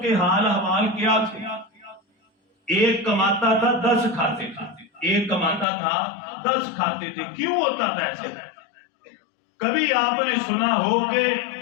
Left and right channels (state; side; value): drops out; right; at 5.7 s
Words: کے حال احوال کیا تھے؟ ایک کماتا تھا 10 کھاتے تھے، ایک کماتا تھا 10 کھاتے تھے۔ کیوں ہوتا تھا ایسے؟ کبھی آپ نے سنا ہو کہ